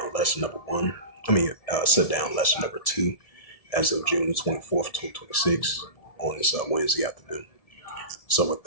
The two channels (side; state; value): right; late; 1.7 ms